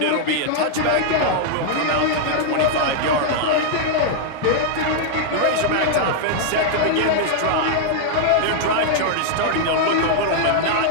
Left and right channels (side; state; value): both; different; correlation -0.01